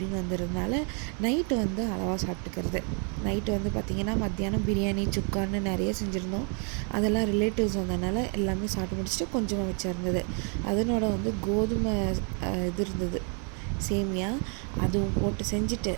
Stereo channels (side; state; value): left; quieter; 38.9 dB